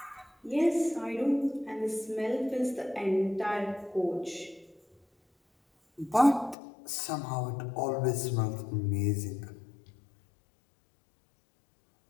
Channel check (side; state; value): right; drops out; at 6.6 s